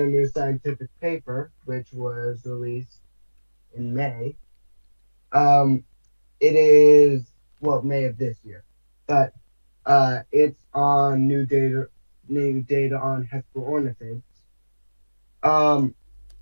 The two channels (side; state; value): both; inverted; correlation -1.00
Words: new scientific paper, which was released in May. It is May of this year, but it's on new data on Hesperornithids.